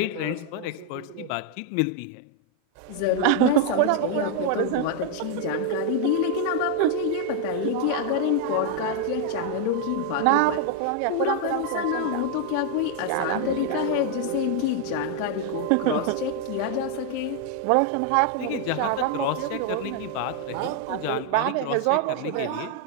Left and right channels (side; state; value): both; different; correlation 0.00